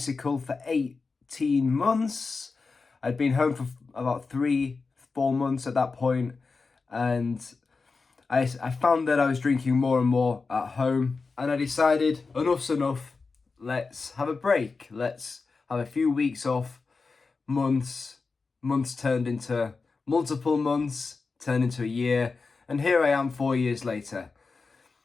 for 18 months. I'd been home for about 4 months at that point, and I found that I was drinking more and more at home, and I decided enough's enough. Let's have a break. Let's have a few weeks off, months turned into multiple months, turned into a year, and here I am 4 years later.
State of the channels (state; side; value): quieter; right; 4.3 dB